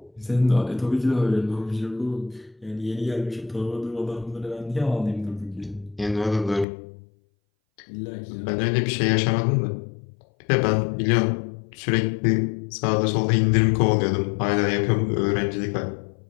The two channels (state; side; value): drops out; right; at 6.7 s